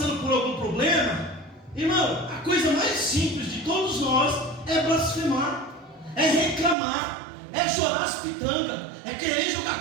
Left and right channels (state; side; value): drops out; left; at 6.8 s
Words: por algum problema, irmão, a coisa mais simples de todos nós é blasfemar, é reclamar, é chorar as pitangas, é querer jogar a